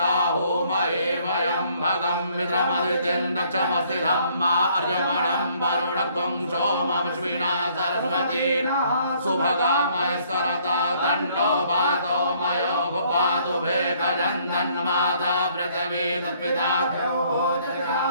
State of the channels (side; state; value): both; inverted; correlation -0.63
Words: महे वयं भगं मित्रमदितिं दक्षमस्ति धम्मा अर्यमणं वरुणत्वं सोममश्विना सरस्वती सुभगामयस्करता तन्नो पातो मयो पातु भेकजन्दन्माता पृथिवी तत्पिता